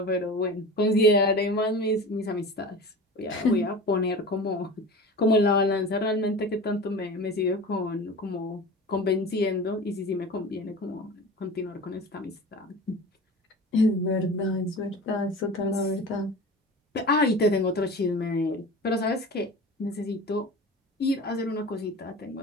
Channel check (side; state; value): both; normal; correlation 0.34